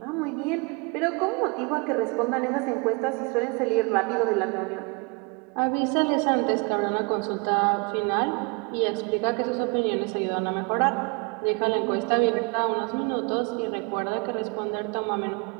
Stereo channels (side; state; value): left; quieter; 31.5 dB